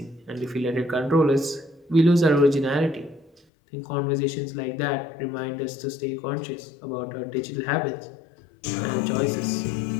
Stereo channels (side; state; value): right; drops out; at 3.4 s